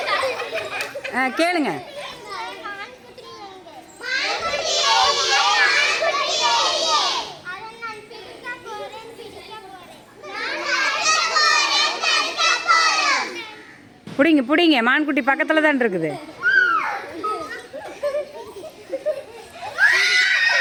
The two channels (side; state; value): both; identical; correlation 1.00